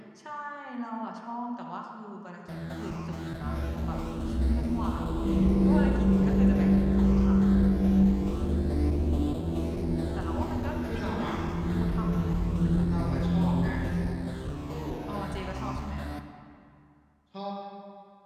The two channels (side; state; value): both; identical; correlation 1.00